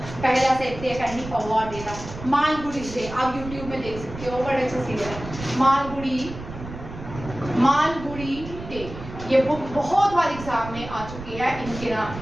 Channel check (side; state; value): right; noise; rumble, 12 dB below the sound